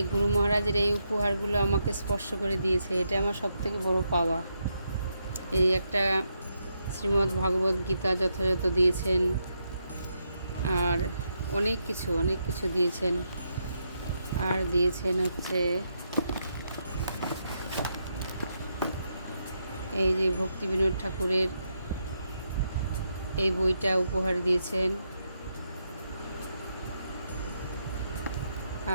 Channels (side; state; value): both; inverted; correlation -0.81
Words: গুরু মহারাজের এই উপহারগুলো আমাকে স্পর্শ করে দিয়েছে। এটা আমার সবথেকে বড় পাওয়া। এই একটা শ্রীমদ্ ভাগবত গীতা যথাযথ দিয়েছেন, আর অনেক কিছু দিয়েছেন। আর দিয়েছেন হচ্ছে এই যে ভক্তি বিনোদ ঠাকুরের এই বইটা উপহার দিয়েছেন।